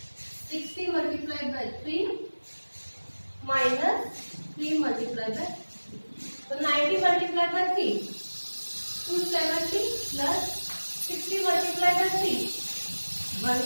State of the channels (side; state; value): both; inverted; correlation -1.00